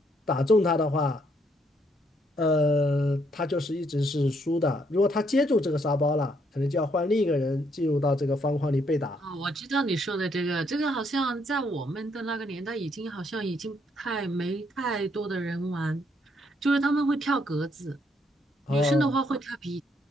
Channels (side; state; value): both; normal; correlation 0.72